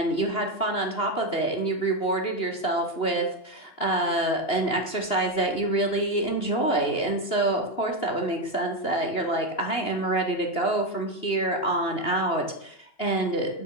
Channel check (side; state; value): right; late; 2.9 ms